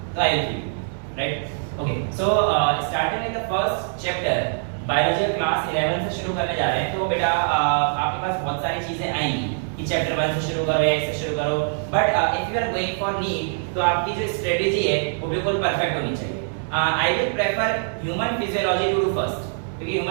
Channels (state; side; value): silent; left; digital silence